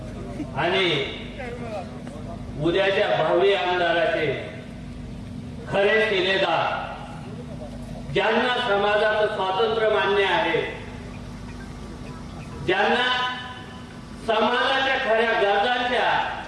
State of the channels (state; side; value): identical; both; correlation 1.00